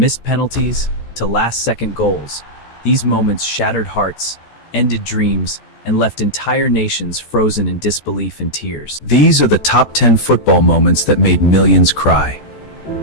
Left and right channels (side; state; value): right; late; 14 ms